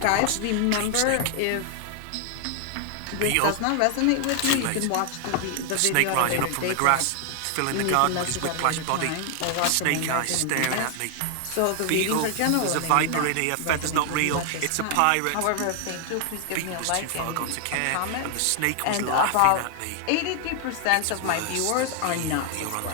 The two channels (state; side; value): different; both; correlation 0.00